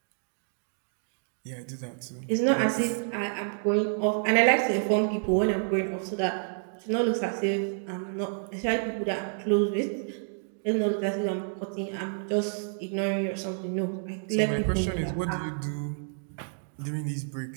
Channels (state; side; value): silent; left; digital silence